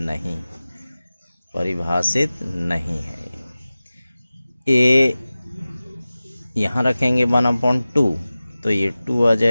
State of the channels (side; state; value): both; inverted; correlation -0.97